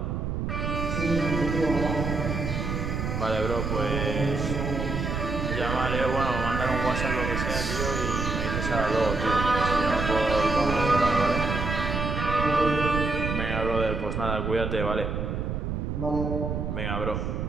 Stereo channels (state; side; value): noise; right; rumble, 2 dB below the sound